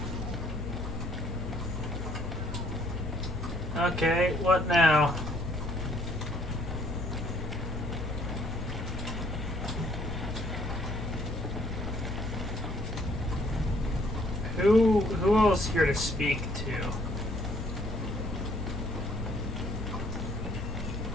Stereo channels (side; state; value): both; normal; correlation 0.64